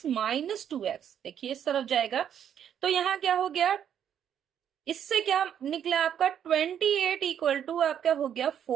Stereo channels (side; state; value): left; quieter; 9.2 dB